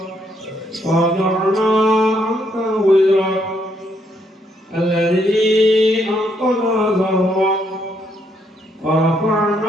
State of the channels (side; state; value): both; normal; correlation 0.73